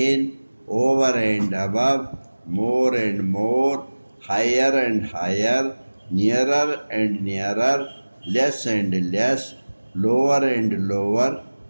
over and above, more and more, higher and higher, nearer and nearer, less and less, lower and lower,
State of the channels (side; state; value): both; inverted; correlation -1.00